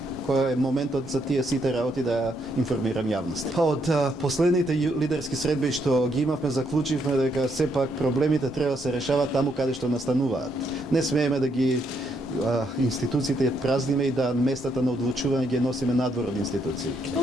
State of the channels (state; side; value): normal; both; correlation 0.75